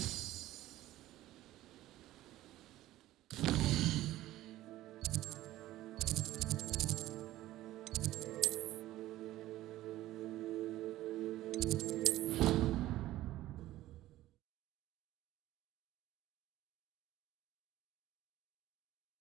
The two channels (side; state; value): left; quieter; 15.3 dB